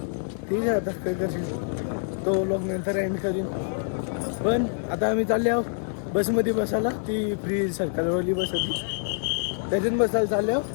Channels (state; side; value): silent; right; digital silence